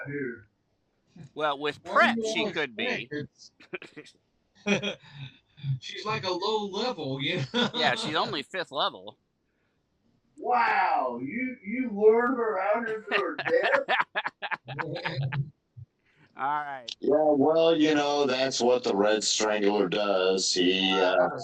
here. Well, with What prep, do you she all could be. She's like a low level, you know? Yeah, she's only 5th level. Wow, you lured her out here to her death? All right. Yeah, well, you know, that's what the Red Strangler does. He, I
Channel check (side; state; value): both; identical; correlation 1.00